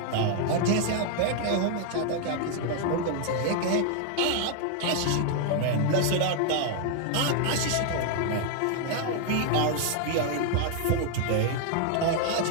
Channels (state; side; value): different; both; correlation 0.00